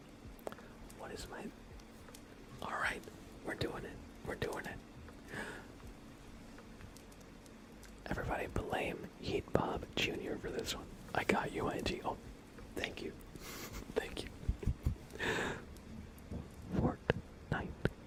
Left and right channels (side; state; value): both; identical; correlation 1.00